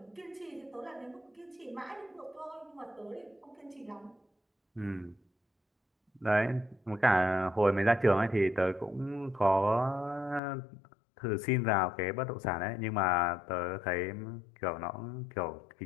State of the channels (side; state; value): right; drops out; at 10.4 s